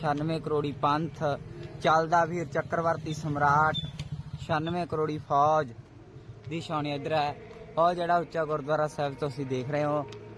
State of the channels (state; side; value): identical; both; correlation 1.00